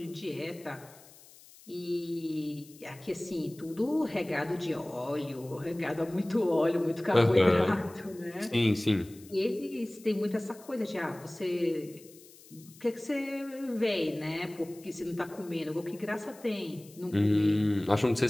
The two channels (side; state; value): left; noise; hiss, 23 dB below the sound